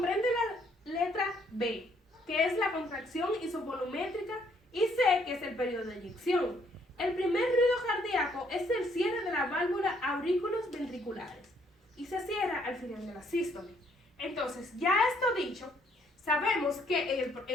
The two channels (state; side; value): normal; both; correlation 0.67